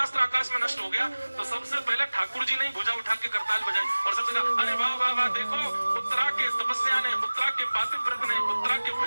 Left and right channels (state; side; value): inverted; both; correlation -1.00